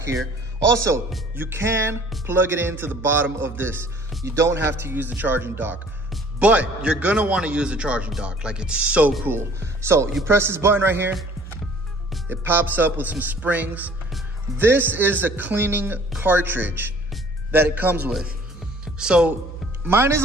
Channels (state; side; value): normal; both; correlation 0.54